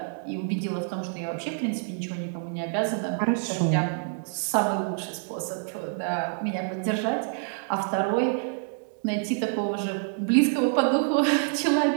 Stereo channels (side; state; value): left; silent; 60 dB below the other